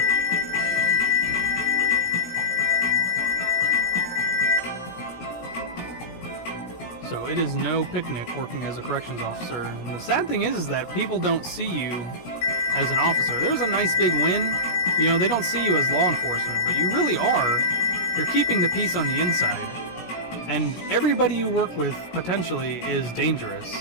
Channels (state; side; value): late; right; 17 ms